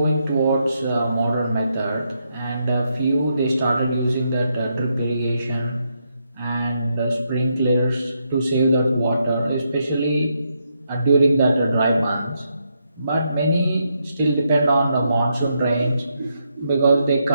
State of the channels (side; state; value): both; inverted; correlation -0.80